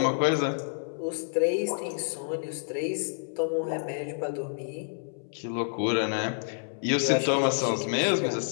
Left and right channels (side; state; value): right; silent; 59 dB below the other